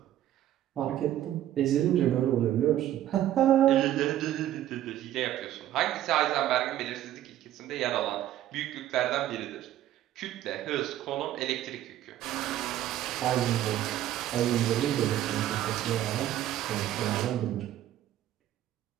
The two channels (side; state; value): left; quieter; 12.6 dB